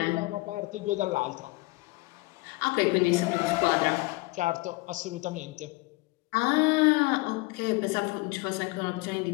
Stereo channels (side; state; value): right; quieter; 23.3 dB